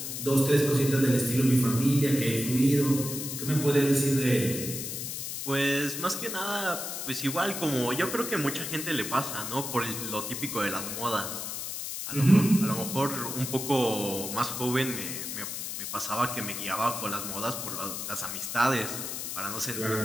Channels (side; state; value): left; noise; hiss, 5 dB below the sound